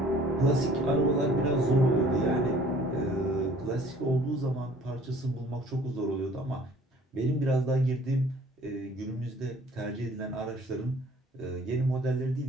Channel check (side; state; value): both; normal; correlation 0.54